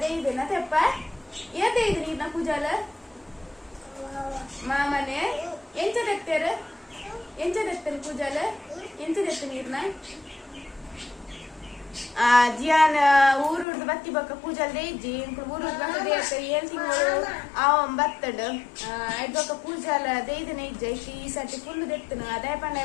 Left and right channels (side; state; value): right; drops out; at 13.7 s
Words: ದೇಯ್ದೇನ ತೆಪ್ಪ ಏ ದೇಯ್ದು ನೀರ್ನ ಕುಜಾಲ ಮಾಮನೆ ಎಂಚ ತೆತ್ತೇರು ಎಂಚ ತೆತ್ತೇರು ಕುಜಾಲ ಎಂಚ ತೆತ್ತು ನೀರ್ನ ಜಿಯಾನ್ ಊರುಡ್ದು ಬತ್ತಿ ಬಕ್ಕ ಪೂಜಾಲ್ ದೇಯ್ಜಿ ಊರುಡ್ದು ಬಕ್ಕ ದೇಯ್ತ ಏಳ್ ತಿಂಗಳು ಅವನ್ ಬತ್ತಡು ಐದ್ ಬಕ್ಕ ಪೂಜಾಲ ದೇಯ್ದನ ಇಜ್ಜೆ ಈ ಸರ್ತಿ ಫುಲ್ ದೆತ್ತನು ಅದೇ ಪಂಡ